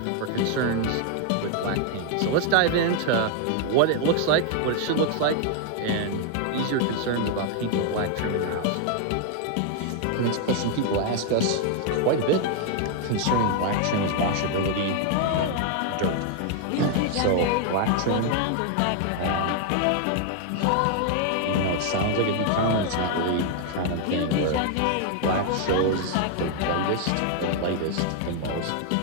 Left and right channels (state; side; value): different; both; correlation 0.00